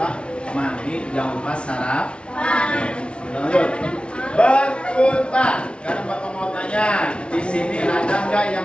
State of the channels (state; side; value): late; right; 0.058 ms